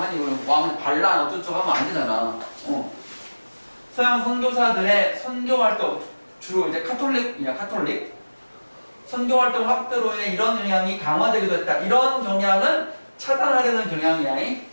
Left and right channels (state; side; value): inverted; both; correlation -1.00